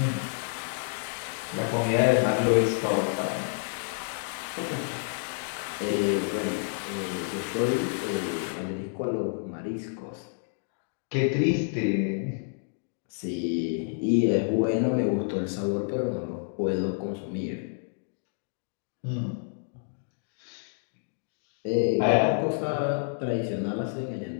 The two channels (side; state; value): right; silent; digital silence